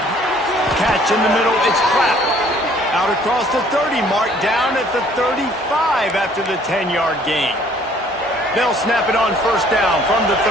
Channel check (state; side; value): normal; both; correlation 0.59